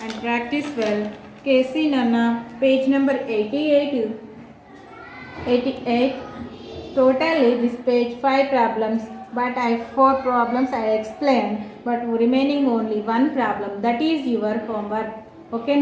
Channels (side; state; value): both; identical; correlation 1.00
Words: and practice well. Casey Nana, page number 88. Totally this page 5 problems, but 4 problems I explained, but remaining only 1 problem. That is your homework. Okay,